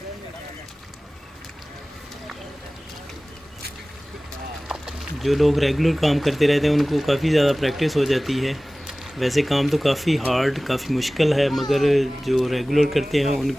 जो लोग रेगुलर काम करते रहते हैं उनको काफ़ी ज़्यादा प्रैक्टिस हो जाती है। वैसे काम तो काफ़ी हार्ड, काफ़ी मुश्किल है, मगर जो रेगुलर करते हैं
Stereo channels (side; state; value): both; normal; correlation 0.98